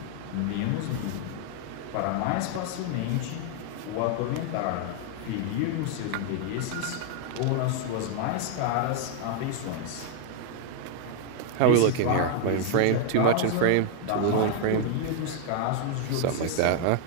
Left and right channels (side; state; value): both; different; correlation 0.00